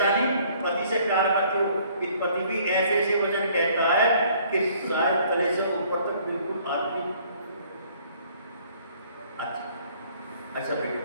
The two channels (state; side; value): inverted; both; correlation -0.59